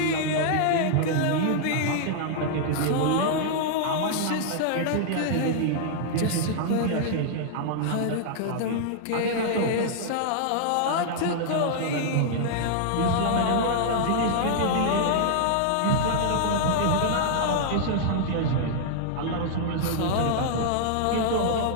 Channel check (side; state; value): both; different; correlation -0.01